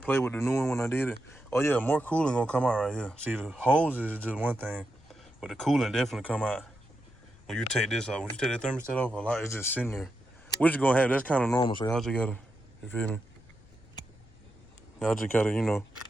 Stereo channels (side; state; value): left; noise; rumble, 26 dB below the sound